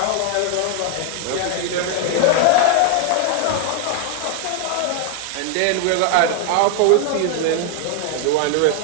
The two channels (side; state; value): both; different; correlation 0.00